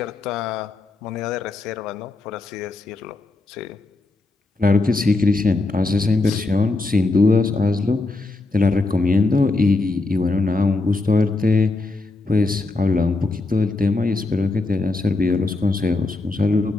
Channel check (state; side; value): quieter; right; 3.2 dB